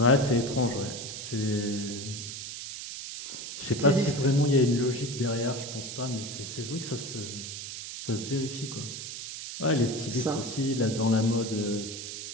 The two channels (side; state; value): right; noise; hiss, 8 dB below the sound